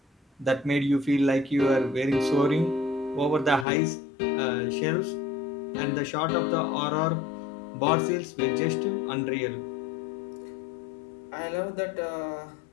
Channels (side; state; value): right; drops out; at 3.7 s